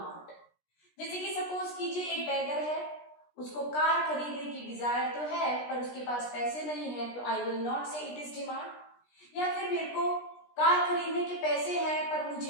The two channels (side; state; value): right; late; 17 ms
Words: जैसे कि सपोज कीजिए एक बेगर है, उसको कार खरीदने की डिजायर तो है पर उसके पास पैसे नहीं है, तो आई विल नॉट से इट इज डिमांड. या फिर मेरे को कार खरीदने के पैसे हैं पर